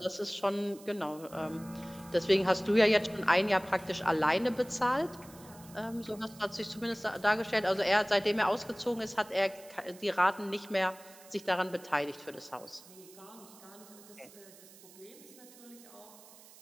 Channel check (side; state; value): right; noise; hiss, 21 dB below the sound